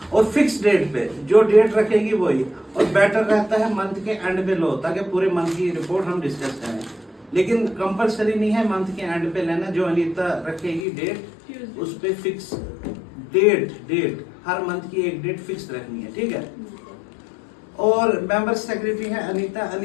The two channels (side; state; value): right; drops out; at 10.9 s